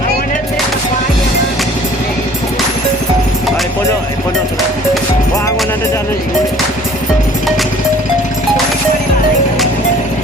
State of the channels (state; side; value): normal; both; correlation 0.52